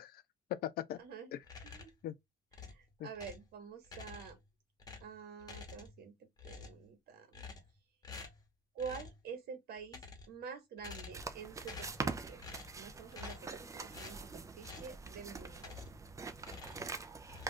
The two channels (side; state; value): both; normal; correlation 0.22